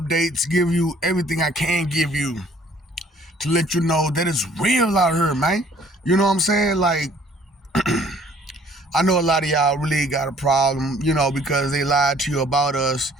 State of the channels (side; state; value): both; normal; correlation 0.58